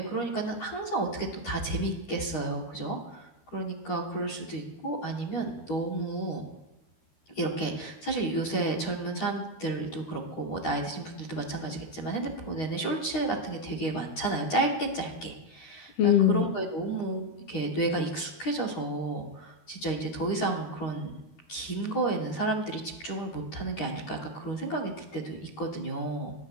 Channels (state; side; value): late; right; 13 ms